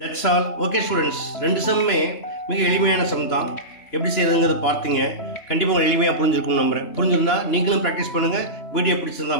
That's all. Okay students, ரெண்டு சம்மே மிக எளிமையான some தான். எப்படி செய்யறதுங்கிறத பார்த்தீங்க. கண்டிப்பாக உங்களுக்கு எளிமையாக புரிஞ்சிருக்கும்னு நம்புறேன். புரிஞ்சிருந்தா நீங்களும் ப்ராக்டிஸ் பண்ணுங்கள். வீடியோ பிடிச்சிருந்தா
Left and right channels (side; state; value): right; late; 2.9 ms